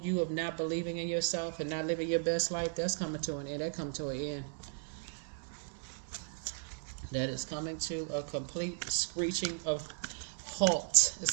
you of not believing in yourself and not living your best life, that's coming to an end. That come to an end. That is coming to a complete screeching of halt.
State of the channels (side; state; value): left; silent; 54 dB below the other